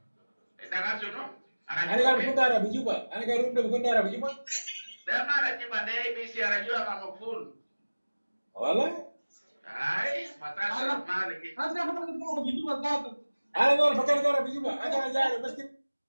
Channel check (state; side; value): inverted; both; correlation -1.00